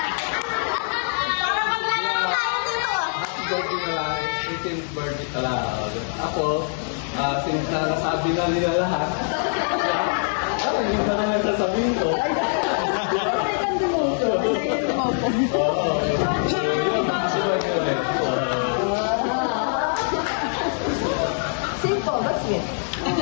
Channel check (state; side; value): silent; right; 63 dB below the other